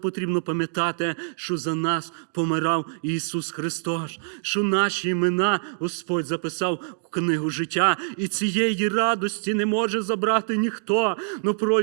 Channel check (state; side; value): silent; left; digital silence